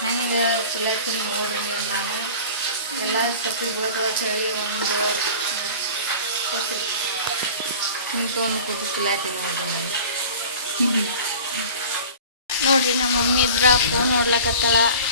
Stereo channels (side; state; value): both; inverted; correlation -0.40